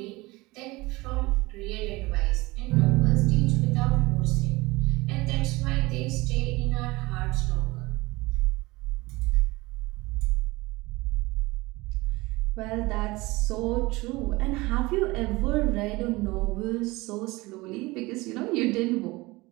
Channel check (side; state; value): left; quieter; 21.8 dB